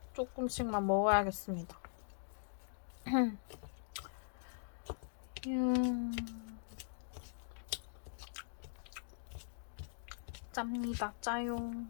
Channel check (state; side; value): silent; right; digital silence